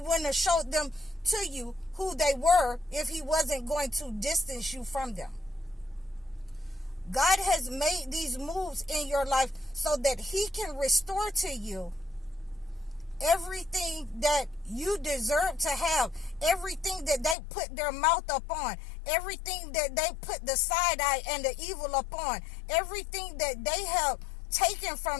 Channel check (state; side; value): drops out; right; at 17.4 s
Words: have showed them to you who they were if he wasn't going to distance you from them. God has made these moves in your life so that he can restore to you everything that you deserve to have, everything that they put their mouth upon, everything that they put the side eye and the evil upon, everything that they have taken